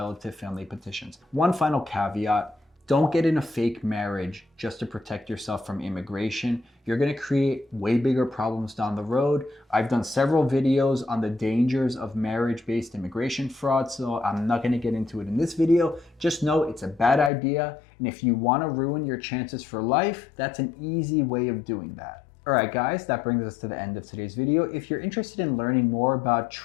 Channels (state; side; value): drops out; right; at 17.3 s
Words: family petitions. One final caveat. Don't get in a fake marriage just to protect yourself from immigration. You're going to create way bigger problems down the road. I've done several videos on the dangers of marriage-based immigration fraud, so I'm not going to get into it in this video. Just know it's a bad idea, and if you want to ruin your chances for life, that's an easy way of doing that. Alright guys, that brings us to the end of today's video. If you're interested in learning more about